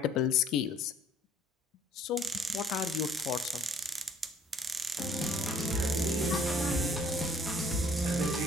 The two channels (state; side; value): normal; both; correlation 0.59